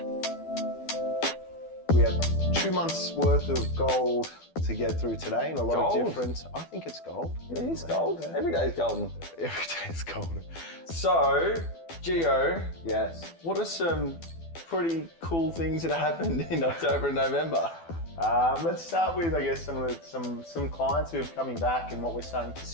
We have 2 months worth of gold to get through today and a lot of different, I think it's gold. Yeah, it's gold. Yeah. Every day is golden. Every day is golden. So, Gio. Yes. What are some pretty cool things that happened in October and November? Let's start with, I guess, some clients who are coming back, and what we're starting to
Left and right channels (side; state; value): right; late; 12 ms